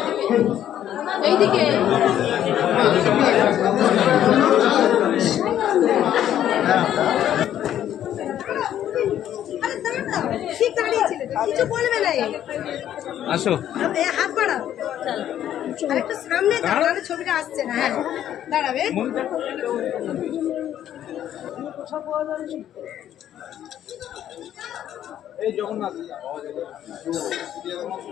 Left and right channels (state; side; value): quieter; right; 11.1 dB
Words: এইদিকে ঠিক দাঁড়িয়েছিল কিছু বলবে না আসো হাত বাড়াও একটু সামনে দাঁড়ালে ছবিটা আসছে না হ্যাঁ দাঁড়াবে এই জগন্নাথ